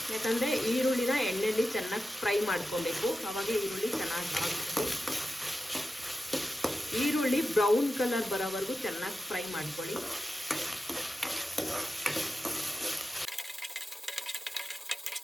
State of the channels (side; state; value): both; normal; correlation 0.92